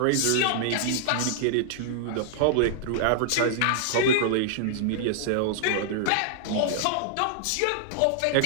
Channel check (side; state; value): both; different; correlation -0.01